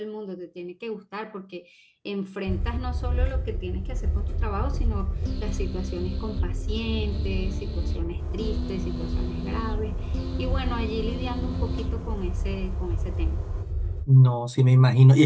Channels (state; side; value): identical; both; correlation 1.00